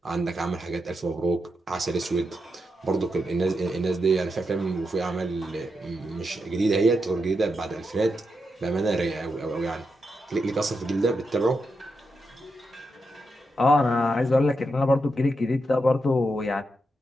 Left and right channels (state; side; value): normal; both; correlation 0.85